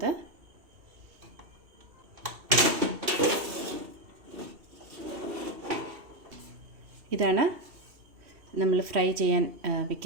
ഇതാണ് നമ്മൾ ഫ്രൈ ചെയ്യാൻ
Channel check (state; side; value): late; left; 2.7 ms